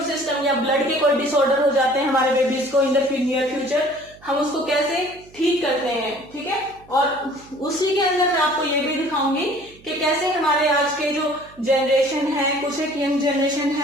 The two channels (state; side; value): noise; right; hum, 25 dB below the sound